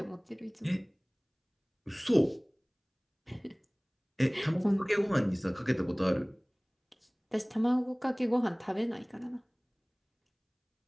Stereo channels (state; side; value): identical; both; correlation 1.00